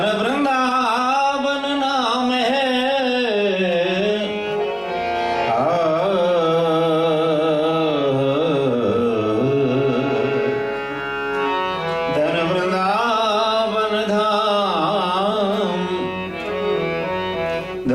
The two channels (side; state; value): both; identical; correlation 1.00